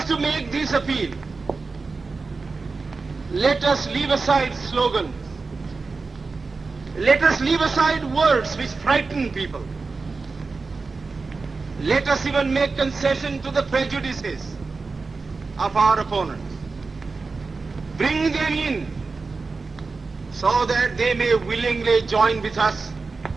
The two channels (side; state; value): left; quieter; 4.1 dB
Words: to make this appeal. Let us leave aside slogans. Let us leave aside words which frighten people. Let us even make concession to the prejudices of our opponents. Bring them in so that they may willingly join with us